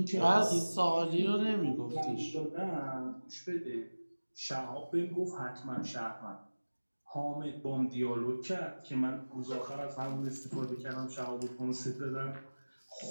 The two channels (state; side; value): inverted; both; correlation -1.00